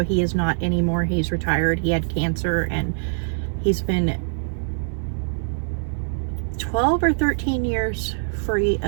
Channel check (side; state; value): left; silent; 63 dB below the other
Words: he is not anymore. He's retired. He had cancer, and he's been 12 or 13 years free